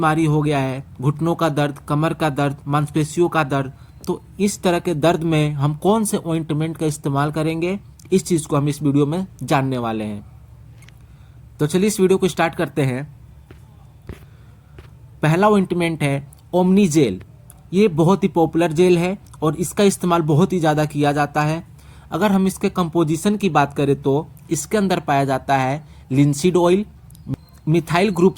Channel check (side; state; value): both; identical; correlation 1.00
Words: हो गया है, घुटनों का दर्द, कमर का दर्द, मांसपेशियों का दर्द, तो इस तरह के दर्द में हम कौन से ऑइंटमेंट का इस्तेमाल करेंगे, इस चीज़ को हम इस वीडियो में जानने वाले हैं। तो चलिए इस वीडियो को स्टार्ट करते हैं। पहला ऑइंटमेंट है ओमनी जेल। ये बहुत ही पॉपुलर जेल है और इसका इस्तेमाल बहुत ही ज़्यादा किया जाता है। अगर हम इसके कंपोजिशन की बात करें तो इसके अंदर पाया जाता है linseed oil, methyl group